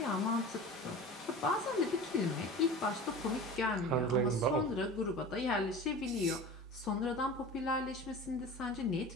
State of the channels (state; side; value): normal; both; correlation 0.35